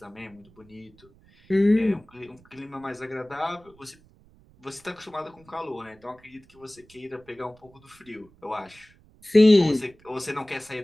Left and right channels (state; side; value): noise; right; rumble, 28 dB below the sound